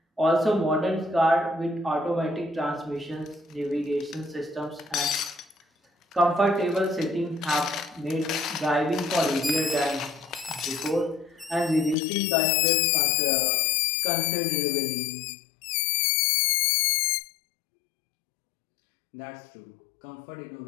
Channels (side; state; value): right; drops out; at 12.0 s